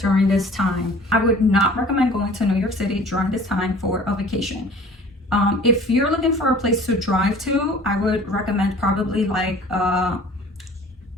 this time? I would not recommend going to New York City during this time for a vacation. If you're looking for a place to drive to, I would recommend probably like a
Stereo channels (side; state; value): both; normal; correlation 0.47